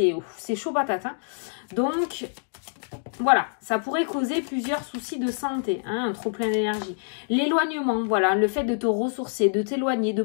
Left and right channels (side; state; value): right; silent; digital silence